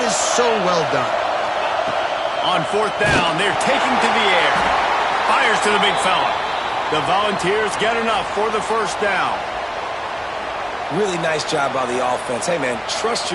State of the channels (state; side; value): identical; both; correlation 1.00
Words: is so well done. On fourth down, they're taking to the air. Fires to the big fella. The Volunteers get enough for the first down. Really nice job by the offense. Hey, man, trust